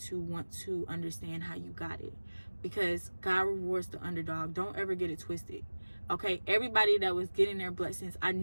want to understand how you got it, because God rewards the underdog. Don't ever get it twisted, okay? Everybody that was getting their blessings, I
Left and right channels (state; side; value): inverted; both; correlation -1.00